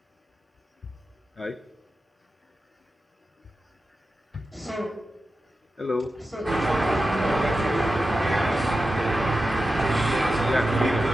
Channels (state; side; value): normal; both; correlation 0.92